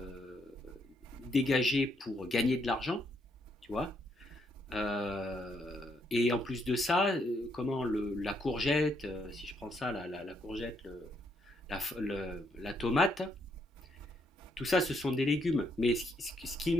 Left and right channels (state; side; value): normal; both; correlation 0.74